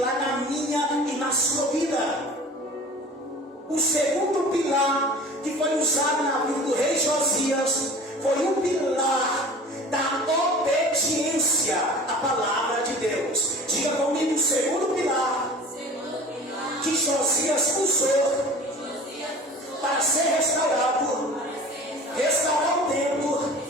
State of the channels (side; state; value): both; normal; correlation 0.42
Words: na minha e na sua vida. O segundo pilar que foi usado na vida do rei Josias foi o pilar da obediência à palavra de Deus. Diga comigo, o segundo pilar que Josias usou para ser restaurado, restaurar o templo,